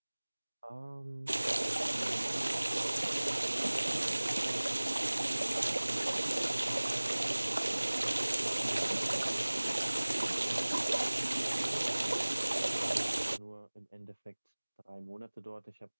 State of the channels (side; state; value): both; inverted; correlation -1.00